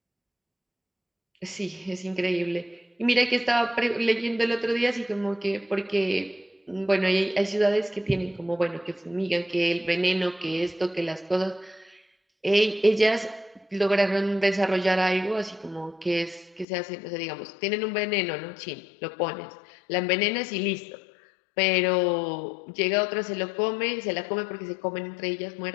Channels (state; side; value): drops out; right; at 16.7 s